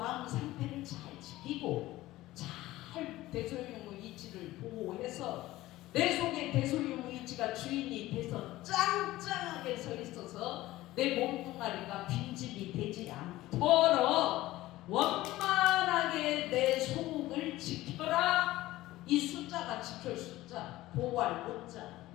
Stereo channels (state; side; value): quieter; right; 16.8 dB